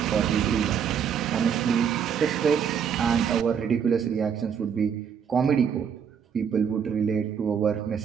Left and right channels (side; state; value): left; quieter; 7.6 dB